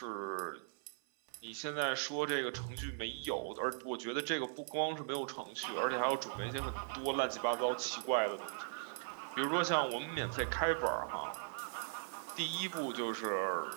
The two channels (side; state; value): left; silent; 52 dB below the other